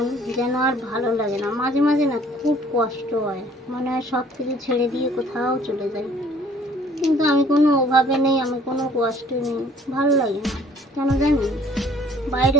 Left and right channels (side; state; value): both; normal; correlation 0.57